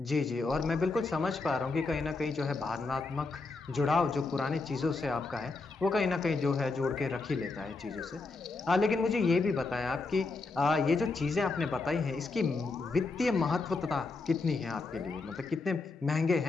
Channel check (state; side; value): quieter; right; 3.8 dB